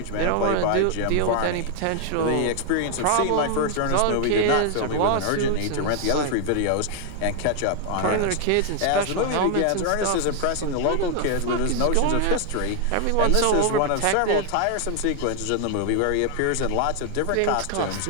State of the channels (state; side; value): different; both; correlation 0.00